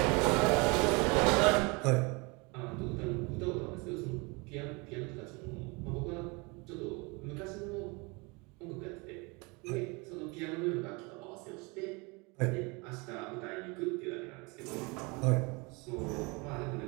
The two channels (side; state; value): left; quieter; 28.1 dB